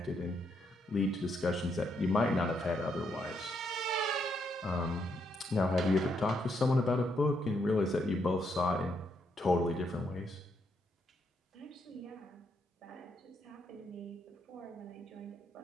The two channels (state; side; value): normal; both; correlation 0.77